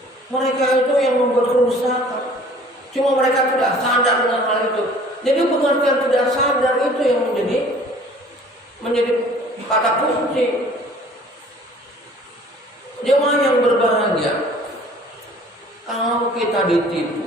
Mereka itu yang membuat kerusakan. Cuma mereka tidak sadar dengan hal itu. Jadi pengertian tidak sadar itu yang menjadi kata kunci. Jemaah yang berbahagia, kalau kalau kita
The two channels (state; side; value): normal; both; correlation 0.51